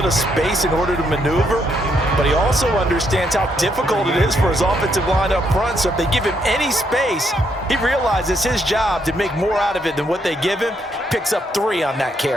of space in order to maneuver. But he also understands how difficult it is for his offensive line up front. So if they give him any space, he realizes his job to make more out of it than what they give him. Picks up 3 on that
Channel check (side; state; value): both; normal; correlation 0.75